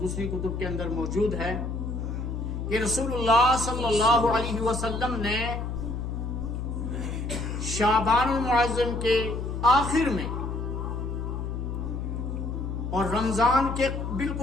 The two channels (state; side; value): noise; left; hum, 4 dB below the sound